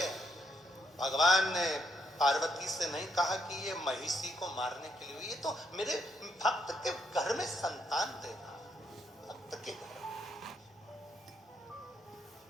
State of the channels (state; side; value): normal; both; correlation 0.76